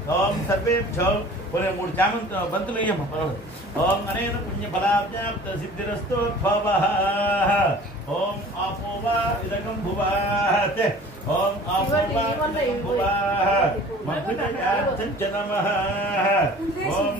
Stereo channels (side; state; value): both; normal; correlation 0.46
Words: ఓం సర్వేభ్యో ఒరే మూడు చామంత బంతులు ఇయ్యమ్మ ఓం అనేన పుణ్య ఫలాప్యాప్త సిద్ధిరస్తోద్భవః ఓం ఆపోవా ఇదకం భువాః ఓం ఆపోవా ఇదకం భువాః మభ్యుదయార్థం చ నమః ఓం